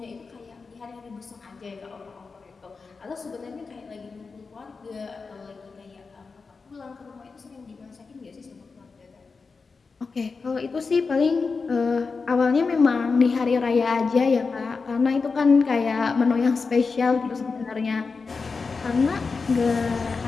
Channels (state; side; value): quieter; right; 4.6 dB